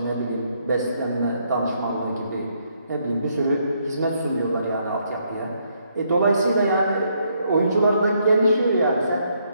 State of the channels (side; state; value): both; inverted; correlation -0.73